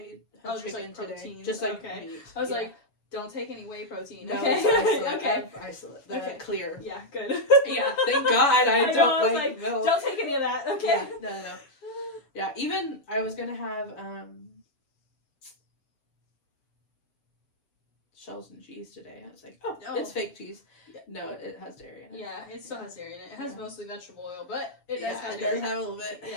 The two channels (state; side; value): late; right; 6.9 ms